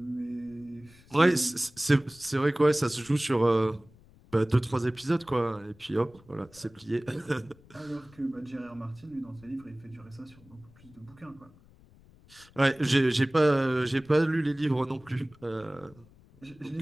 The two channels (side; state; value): left; noise; rumble, 26 dB below the sound